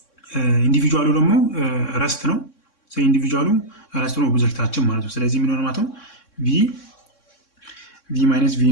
ኢንዲቪጁዋሉ ደግሞ ረስት ነው። ስለዚህ ኢንዲቪጁዋሉ ረስት ነው ኦብጀክታችን ማለት ነው። ስለዚህ ምን ሆነ ማለት ነው ቪ ማይነስ ቪ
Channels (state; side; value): late; right; 3.6 ms